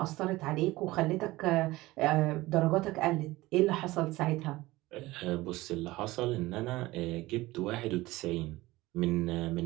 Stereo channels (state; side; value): quieter; left; 19.1 dB